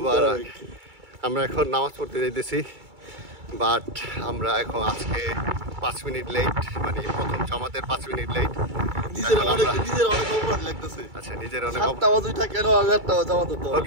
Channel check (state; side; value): late; left; 2.3 ms